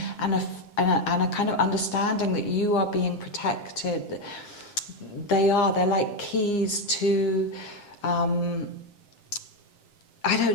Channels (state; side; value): late; right; 7.6 ms